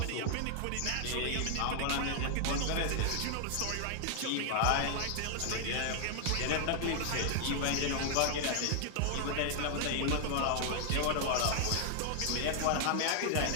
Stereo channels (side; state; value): both; different; correlation 0.00